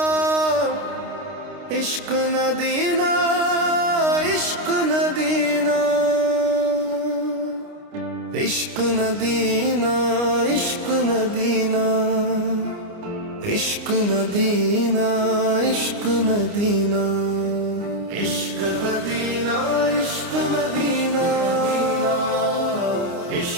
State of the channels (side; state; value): left; late; 29 ms